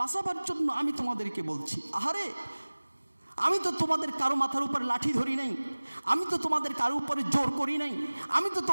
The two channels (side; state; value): both; inverted; correlation -1.00